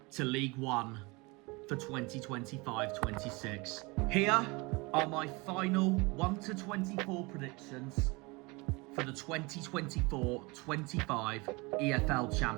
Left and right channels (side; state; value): left; quieter; 25.9 dB